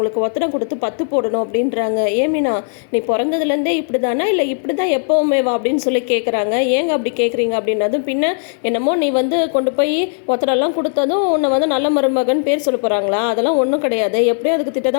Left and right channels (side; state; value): right; silent; digital silence